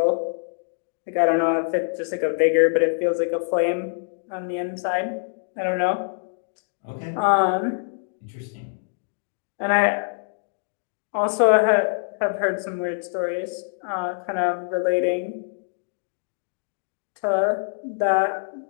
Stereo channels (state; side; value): silent; right; digital silence